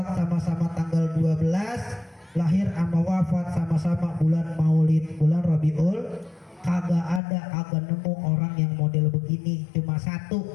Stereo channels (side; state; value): right; drops out; at 7.2 s